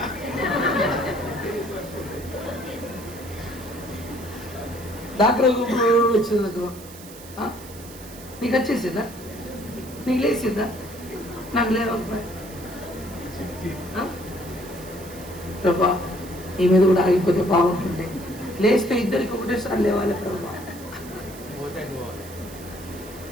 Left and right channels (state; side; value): noise; right; hiss, 17 dB below the sound